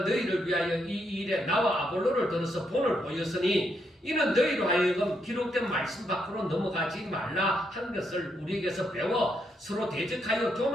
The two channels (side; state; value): both; normal; correlation 0.78